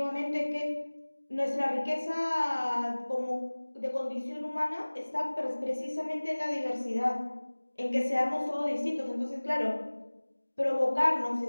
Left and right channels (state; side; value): inverted; both; correlation -1.00